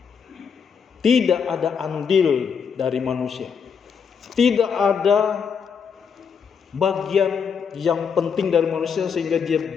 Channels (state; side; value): quieter; right; 6.6 dB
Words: Tidak ada andil dari manusia. Tidak ada bagian yang penting dari manusia sehingga dia